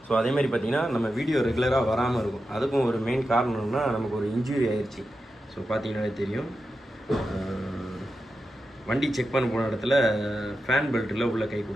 ஸோ அதேமாதிரி பார்த்தீங்கன்னா நம்ம வீடியோ ரெகுலராக வராமல் இருக்கும், அதுக்கும் ஒரு மெயின் காரணம்னா நமக்கு ஒரு இன்ஜுரி ஆயிடுச்சு. ஸோ பார்த்தீங்கன்னாலே தெரியும், வண்டி செக் பண்ண போன இடத்துல ஃபேன் பெல்ட்டில் உள்ளே கை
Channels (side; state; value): both; normal; correlation 0.90